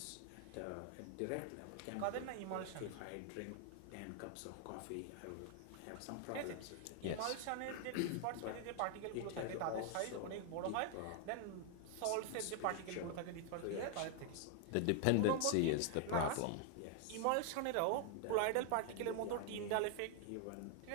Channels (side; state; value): both; different; correlation 0.00